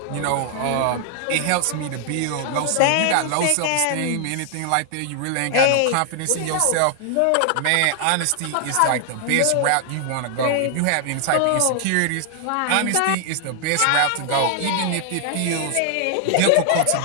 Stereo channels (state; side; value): different; both; correlation 0.00